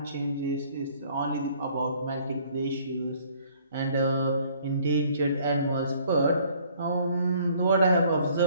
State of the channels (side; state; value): both; inverted; correlation -0.59